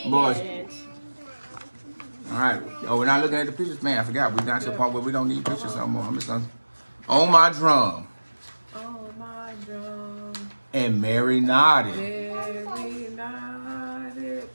Boys. did it. All right. Oh, we're not looking at the pictures, man. I forgot. We got to the point where we don't need pictures no more. I'm just gonna on my drum. Oh my drum. And Mary nodded. Very nodded.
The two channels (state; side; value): inverted; both; correlation -1.00